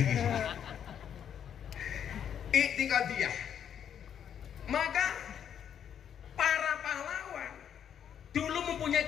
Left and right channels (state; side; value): quieter; right; 8.8 dB